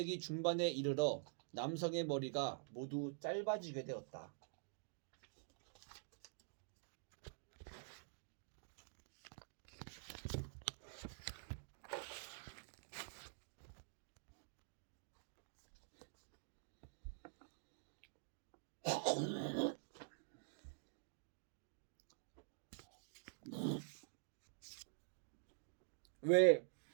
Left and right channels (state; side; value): silent; left; digital silence